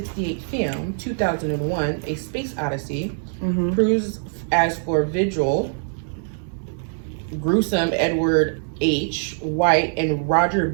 film, 2001, A Space Odyssey, proves as for Vigil, gruesome Edward H. White, and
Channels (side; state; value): left; silent; digital silence